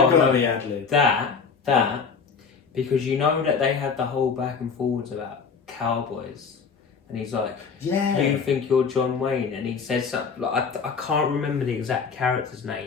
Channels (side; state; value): right; quieter; 5.6 dB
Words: got to be ad-lib. That, because you know that they had the whole back and forwards about cowboys. And he's like, yeah, you think you're John Wayne? And he says something, like, I can't remember the exact character's